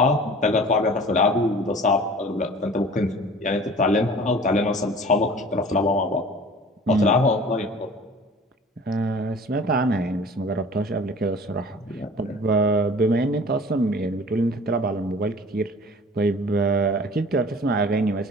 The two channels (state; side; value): normal; both; correlation 0.45